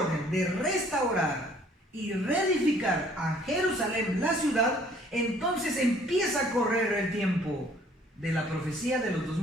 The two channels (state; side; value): normal; both; correlation 0.58